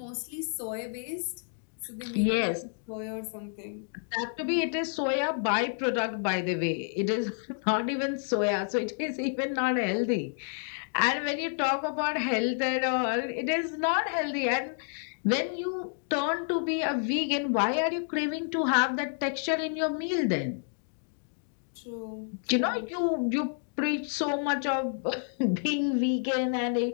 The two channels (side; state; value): right; silent; 58 dB below the other